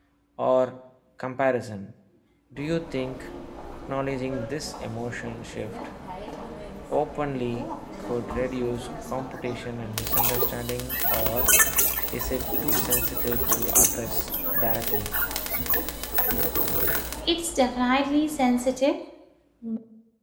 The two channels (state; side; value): identical; both; correlation 1.00